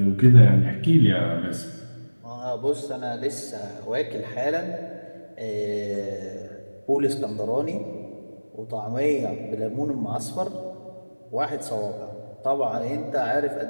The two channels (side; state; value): both; inverted; correlation -1.00